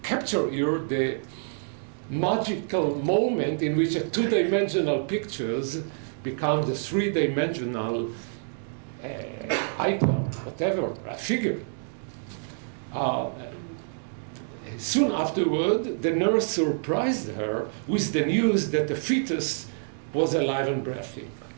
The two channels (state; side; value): silent; left; digital silence